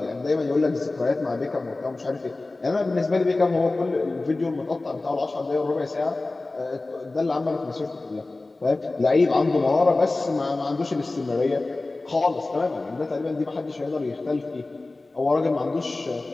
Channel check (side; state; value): right; quieter; 3.2 dB